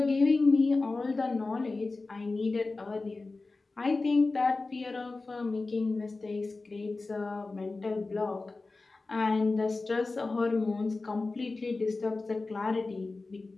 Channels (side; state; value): right; quieter; 3.6 dB